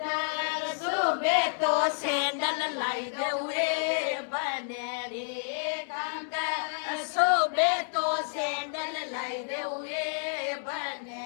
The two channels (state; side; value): silent; right; digital silence